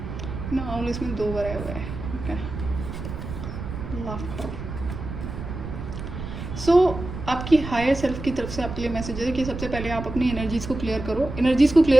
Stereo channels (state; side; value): noise; right; rumble, 8 dB below the sound